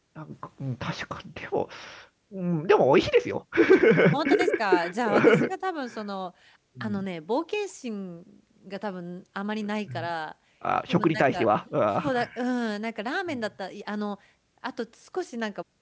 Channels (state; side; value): identical; both; correlation 1.00